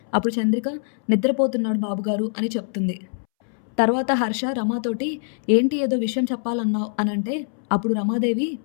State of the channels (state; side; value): silent; right; 63 dB below the other